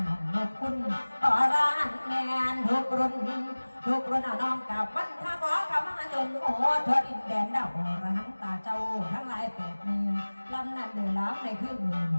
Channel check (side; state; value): both; inverted; correlation -1.00